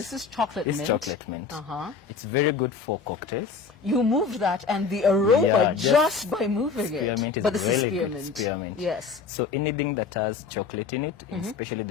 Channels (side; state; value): right; quieter; 5.2 dB